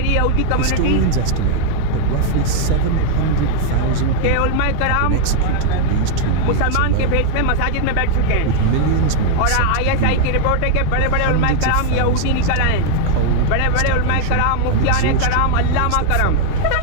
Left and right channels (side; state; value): both; different; correlation 0.00